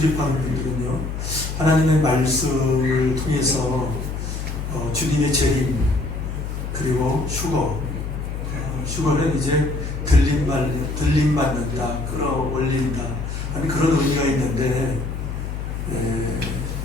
분들은요, 하나님의 말씀을 통해서 주님의 재림, 그리고 휴거는 이제 들림받는다, 끌어올린다 하는 그런 의미가 있는데,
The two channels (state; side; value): noise; left; hum, 5 dB below the sound